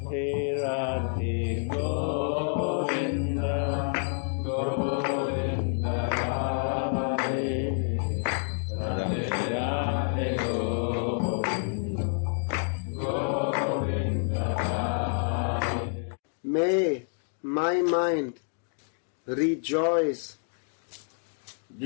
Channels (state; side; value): silent; right; digital silence